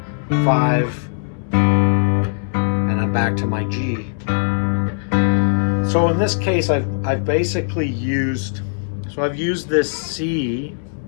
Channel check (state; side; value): silent; right; digital silence